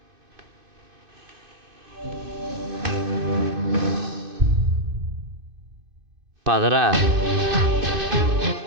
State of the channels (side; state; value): left; late; 2.5 ms